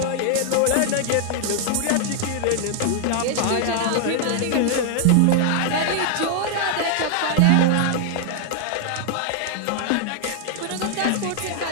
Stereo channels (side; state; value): both; different; correlation 0.00